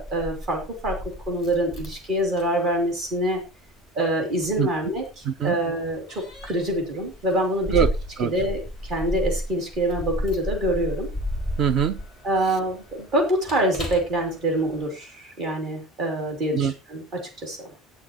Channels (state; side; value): normal; both; correlation 0.35